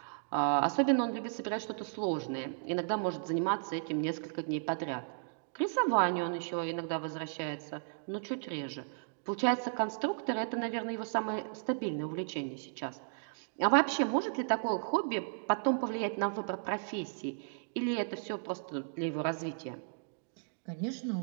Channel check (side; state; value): left; silent; digital silence